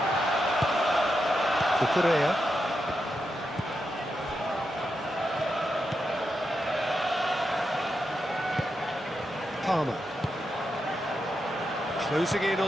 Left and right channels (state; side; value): normal; both; correlation 0.86